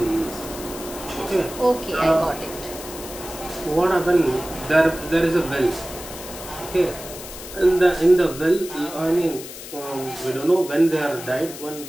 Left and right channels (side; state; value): left; noise; hiss, 13 dB below the sound